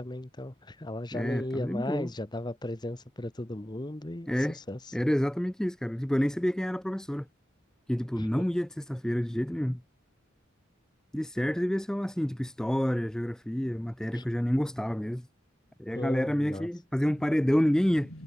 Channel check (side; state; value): both; normal; correlation 0.98